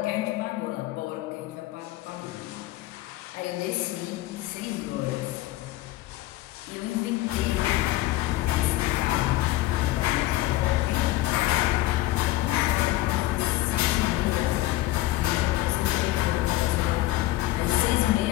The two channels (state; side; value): quieter; right; 17.1 dB